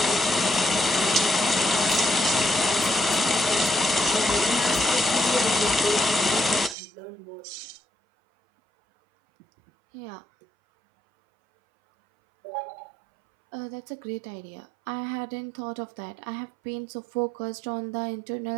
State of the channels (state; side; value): drops out; left; at 6.8 s